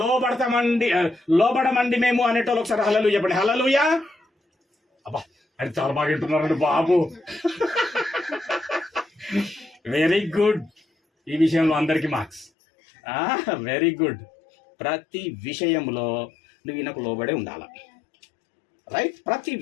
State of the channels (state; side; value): drops out; right; at 12.5 s